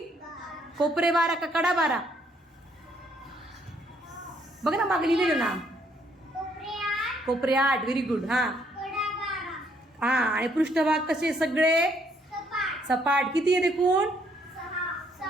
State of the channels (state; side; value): normal; both; correlation 0.69